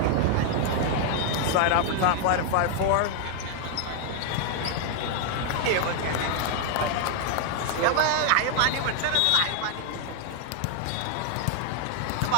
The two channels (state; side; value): different; both; correlation 0.00